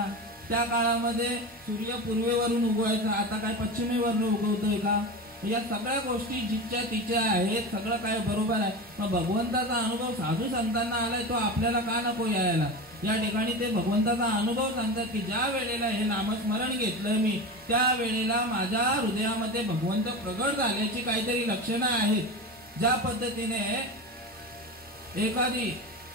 त्या काळामध्ये सूर्य पूर्वेवरून उगवायचा, आता काय पश्चिमेवरून उगवतोय का? या सगळ्या गोष्टी जिच्या तिच्या आहेत, सगळं काय बरोबर आहे. मग भगवंताचा अनुभव साधू संतांना आलाय, तो आपल्याला का नको यायला? या ठिकाणी ते भगवंताचा अनुभव सांगतात की ज्या वेळेला हे नामस्मरण घेतलं मी, त्या वेळेला माझ्या हृदयामध्ये भगवंत प्रगट झाल्याची काहीतरी लक्षणं आहेत. ज्या पद्धतीने एखादी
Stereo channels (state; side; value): normal; both; correlation 0.25